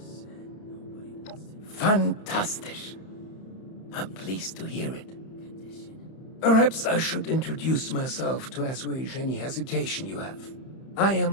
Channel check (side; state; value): right; late; 31 ms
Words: and nobody wants to know Fantastic! I'm pleased to hear it. condition? Perhaps I should introduce myself to assuage any hesitation you have. I